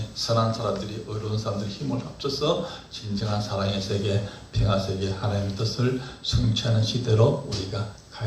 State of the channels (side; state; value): both; identical; correlation 1.00